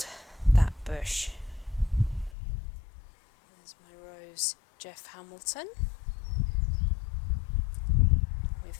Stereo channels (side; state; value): right; drops out; at 2.4 s